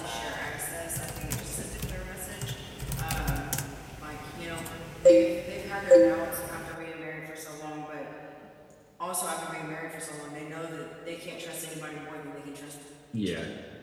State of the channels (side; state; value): both; identical; correlation 1.00